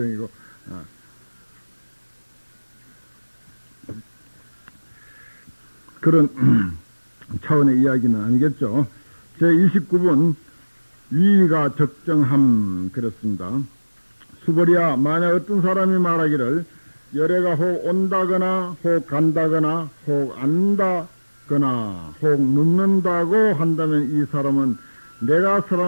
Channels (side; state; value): both; inverted; correlation -1.00